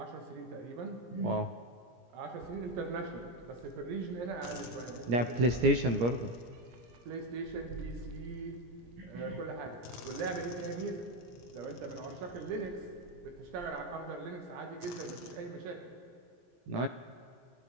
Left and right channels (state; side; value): late; left; 17 ms